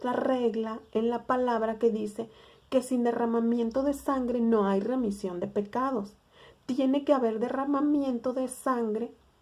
regla en la palabra que dice que sin derramamiento de sangre no hay remisión de pecados. Tiene que haber derramamiento de sangre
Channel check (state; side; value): identical; both; correlation 1.00